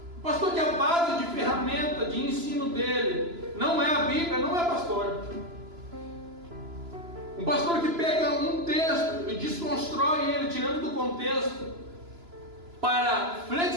O pastor que a base de ferramenta de ensino dele não é a Bíblia, não é pastor. Um pastor que pega um texto e desconstrói ele, tirando do contexto, para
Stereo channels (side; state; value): left; late; 2.9 ms